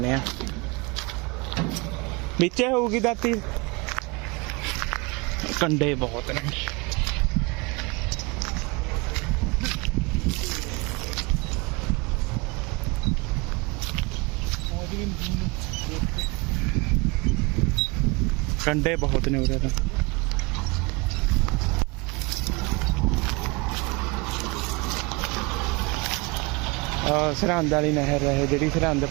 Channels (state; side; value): quieter; left; 26.7 dB